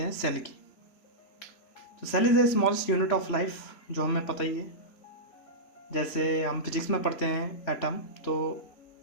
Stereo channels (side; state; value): right; late; 3.4 ms